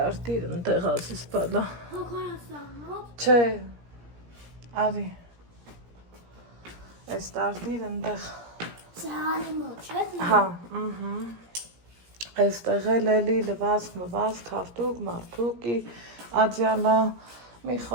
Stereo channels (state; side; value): late; left; 17 ms